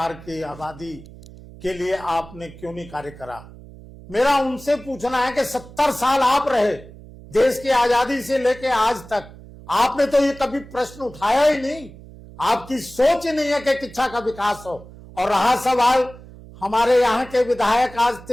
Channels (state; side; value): noise; right; hum, 18 dB below the sound